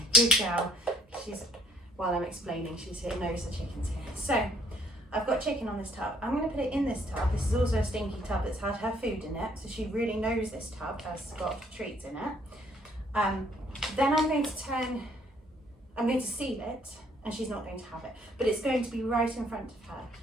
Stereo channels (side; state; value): both; normal; correlation 0.64